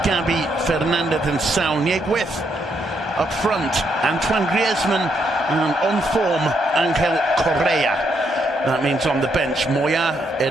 Gabi, Fernandez and Saul Nieguez. Up front, Antoine Griezmann, and on form, Angel Correa. That means on the bench, Moya,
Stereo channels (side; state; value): both; normal; correlation 0.76